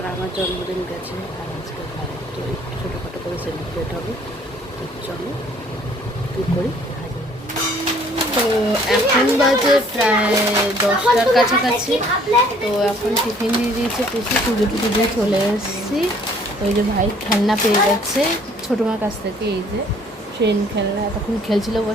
আমার জন্মদিন গেছে আর আজকে ভাই, তো একটু ছোটোখাটো করে সেলিব্রেট হবে। তো চলো কী করি। তো এখন বাজে প্রায় 10টার কাছাকাছি। তো এখন টিফিন দিয়ে দিয়েছে পিসি, পুজো টুজো দিয়ে চলে এসেছি। ওই যে ভাই খেলনা পেয়ে যাচ্ছে ছোটো মার কাছ থেকে, এই যে ট্রেন খেলনা, তখন খেলছিল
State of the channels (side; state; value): both; normal; correlation 0.59